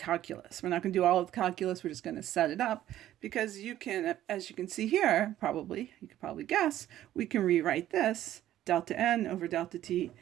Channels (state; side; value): quieter; left; 12.9 dB